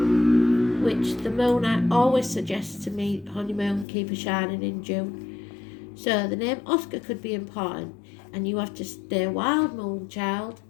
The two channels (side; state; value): right; drops out; at 3.9 s